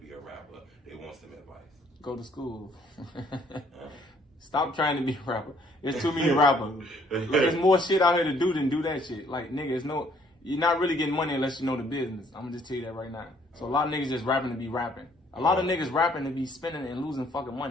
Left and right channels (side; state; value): both; normal; correlation 0.63